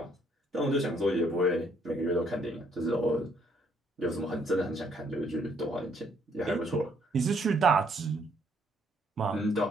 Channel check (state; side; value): normal; both; correlation 0.68